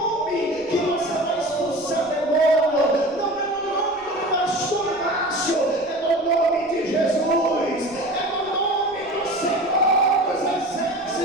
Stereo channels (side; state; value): right; noise; rumble, 28 dB below the sound